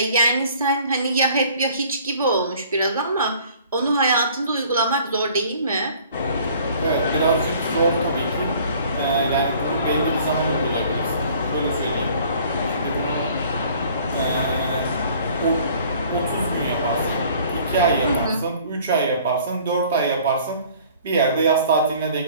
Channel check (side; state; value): both; inverted; correlation -0.54